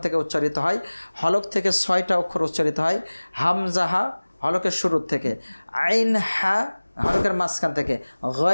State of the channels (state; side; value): inverted; both; correlation -1.00